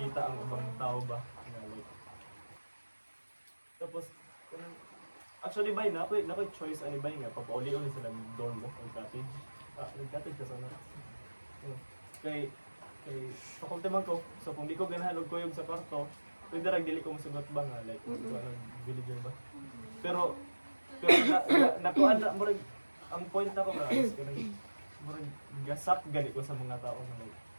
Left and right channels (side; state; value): both; inverted; correlation -1.00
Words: ang ibang tao ba nga like. Tapos actually bay na ako choice ani bay nga papauli-uli sila ng dorm mo o cottage. Nag-cottage ka sana. Kay faculty man ko. So kung di ko ganahan og kuyog sa kwarto, pwede ra dili ko musugot ba nga like villager ba. Pero nakuan na murag ang point ako nga is kanang murag gasak gali ko sa mga tao na like